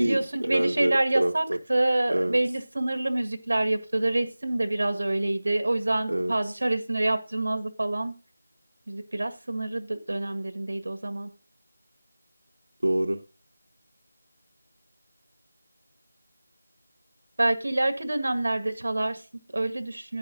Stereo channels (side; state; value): both; inverted; correlation -0.99